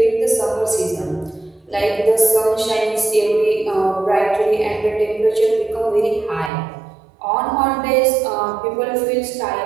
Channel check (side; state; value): left; drops out; at 6.5 s